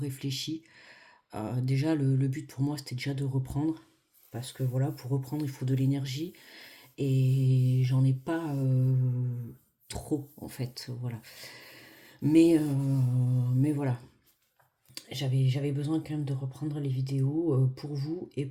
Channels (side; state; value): both; identical; correlation 1.00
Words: Déjà, le but pour moi, c'était déjà de reprendre. Parce que voilà, pour reprendre, il faut de l'énergie. Et j'en ai pas trop, en fait. Voilà. Mais voilà. J'avais besoin quand même de reprendre les vidéos pour vous et